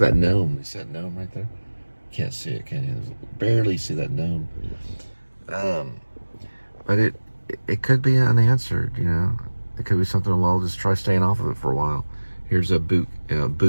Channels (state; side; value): inverted; both; correlation -1.00